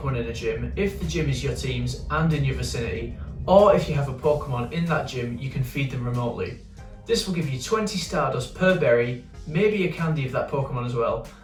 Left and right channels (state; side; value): identical; both; correlation 1.00